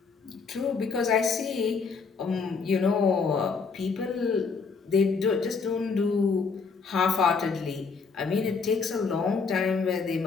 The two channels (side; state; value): right; quieter; 5.0 dB